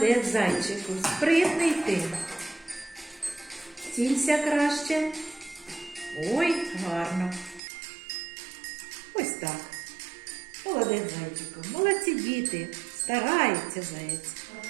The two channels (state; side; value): drops out; left; at 7.6 s